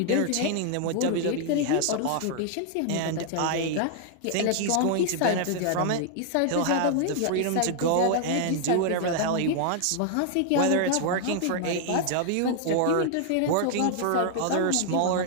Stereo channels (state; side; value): different; both; correlation 0.00